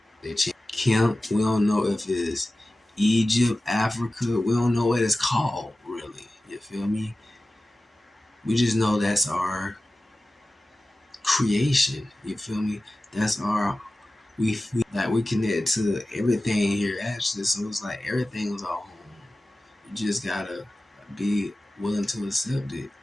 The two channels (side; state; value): both; normal; correlation 0.95